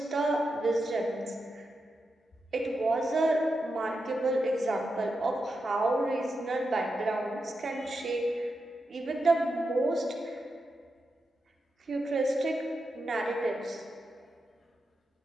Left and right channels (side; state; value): both; normal; correlation 0.87